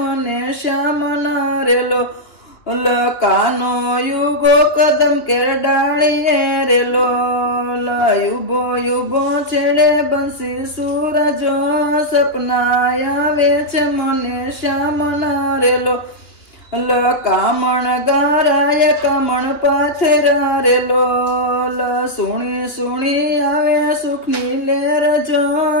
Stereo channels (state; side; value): late; right; 2.9 ms